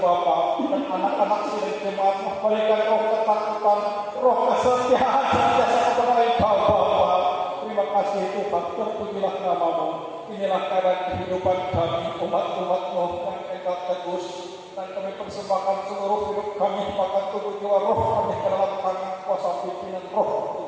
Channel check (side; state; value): both; identical; correlation 1.00